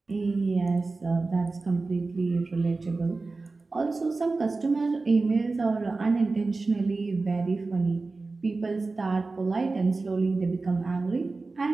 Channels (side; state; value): left; quieter; 3.7 dB